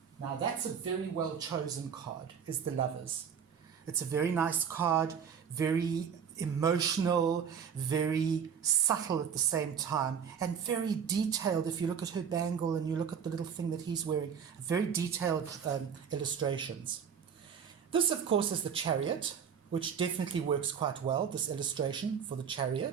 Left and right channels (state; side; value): quieter; left; 7.4 dB